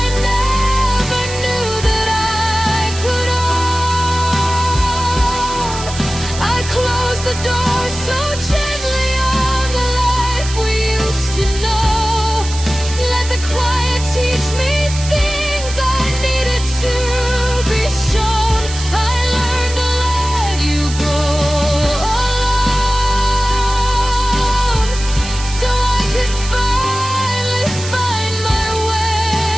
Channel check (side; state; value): right; noise; hiss, 10 dB below the sound